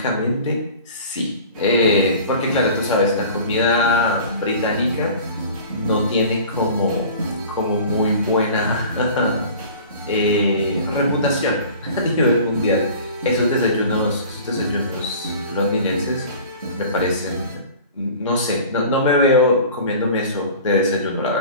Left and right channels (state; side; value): inverted; both; correlation -0.42